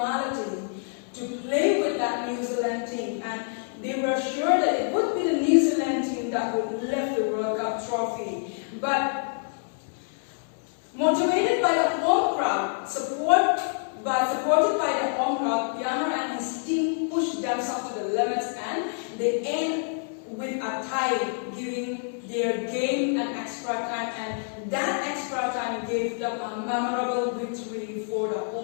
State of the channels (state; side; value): silent; right; 60 dB below the other